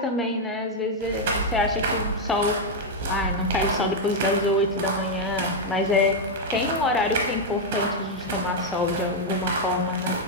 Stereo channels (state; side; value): normal; both; correlation 0.00